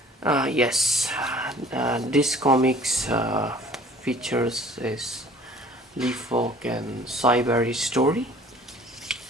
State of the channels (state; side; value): normal; both; correlation 0.50